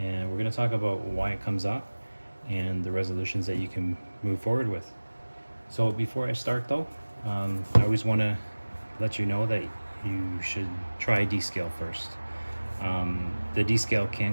we're going to talk about why it comes up and the resolutions that you can move forward with. So before I start though, I always want to let you know that you should try Descale first. The Descale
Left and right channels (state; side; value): inverted; both; correlation -1.00